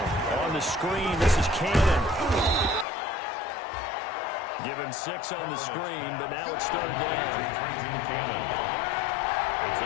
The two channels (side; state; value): right; drops out; at 2.9 s